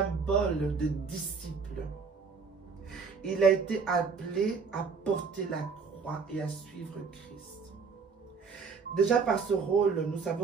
de disciple. Il a été appelé à porter la croix et à suivre Christ. Déjà par ce rôle, nous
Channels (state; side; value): quieter; left; 5.2 dB